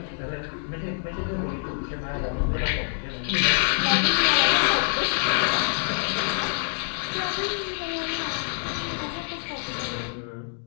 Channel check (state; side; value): silent; right; 61 dB below the other